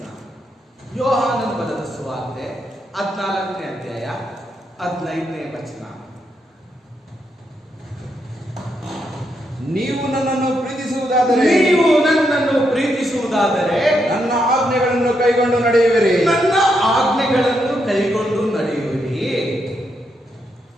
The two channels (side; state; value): both; normal; correlation 0.80